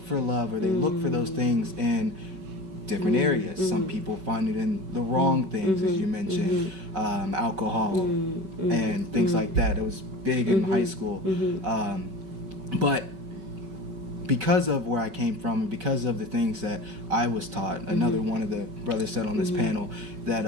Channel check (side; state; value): left; late; 5.3 ms